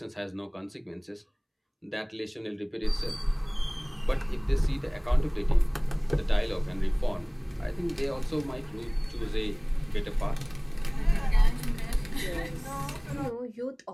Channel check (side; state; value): both; identical; correlation 1.00